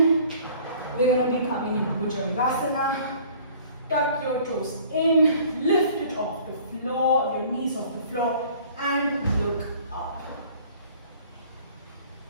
We're going to be coming into Bhujangasana. Tuck your toes in, lift it off the floor, your knees off the floor, and look up.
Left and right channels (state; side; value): inverted; both; correlation -0.52